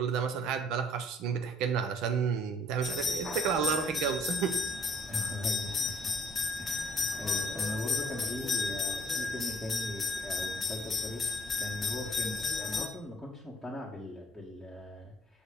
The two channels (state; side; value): normal; both; correlation 0.61